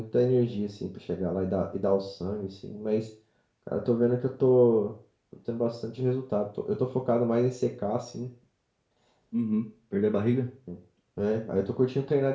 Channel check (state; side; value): identical; both; correlation 1.00